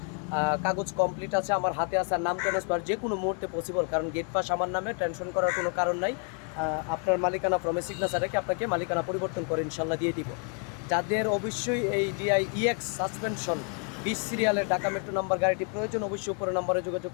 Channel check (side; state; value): right; quieter; 38.5 dB